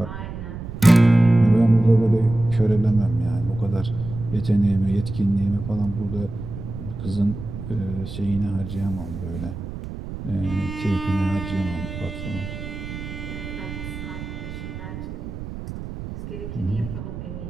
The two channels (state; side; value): noise; right; rumble, 9 dB below the sound